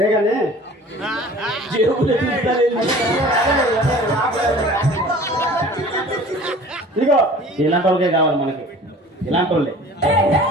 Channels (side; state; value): both; normal; correlation 0.45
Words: ఇదిగో ఇలాంటి వాళ్ళకే కావాలి మనకి, ఇలాంటి వాళ్ళే.